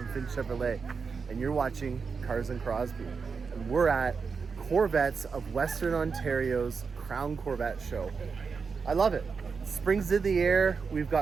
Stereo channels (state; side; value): quieter; left; 5.3 dB